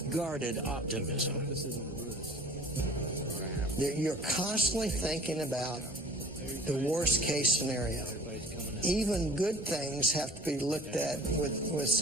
guarded optimism. You're constantly thinking about the worst case scenario. Even good things have to be looked at with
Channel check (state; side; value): normal; both; correlation 0.46